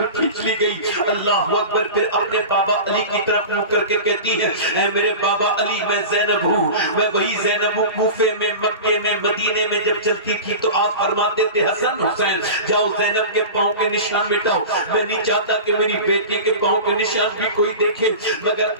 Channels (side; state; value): both; inverted; correlation -0.32